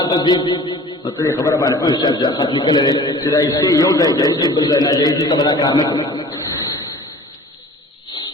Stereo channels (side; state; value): both; normal; correlation 0.44